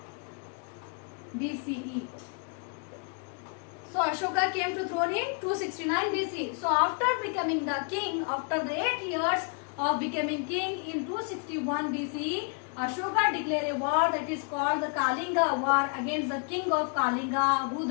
BCE. So Ashoka came to throne in 269 BC. So after becoming the king, after the 8 years of becoming king in 261 BC, Ashoka declared a war that is called the Kalinga War against the king of Kalinga,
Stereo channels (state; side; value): quieter; right; 39.8 dB